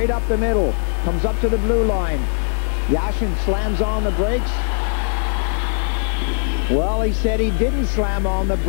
up the middle. Comes up to the blue line. Yashin slams on the brakes. Well, he said he didn't slam on the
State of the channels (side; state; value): right; silent; 66 dB below the other